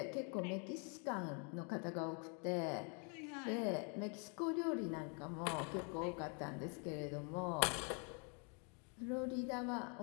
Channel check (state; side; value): quieter; right; 37.8 dB